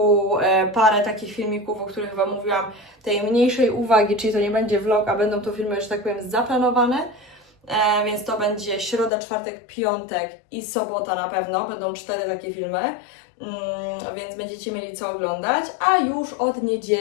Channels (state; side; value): drops out; right; at 9.1 s